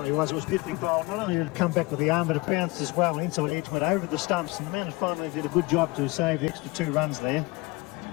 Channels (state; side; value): quieter; right; 23.4 dB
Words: was. It was beautifully bowled. Not only did it come back with the arm, but it bounced as well. Inside edge went over the stumps, and the man finally did a good job to save the extra 2 runs there.